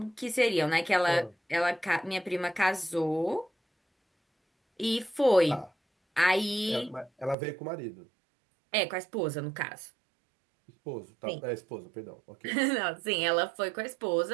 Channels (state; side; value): drops out; left; at 7.4 s